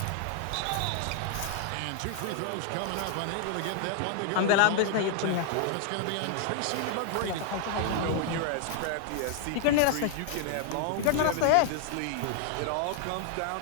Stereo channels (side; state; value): both; different; correlation 0.00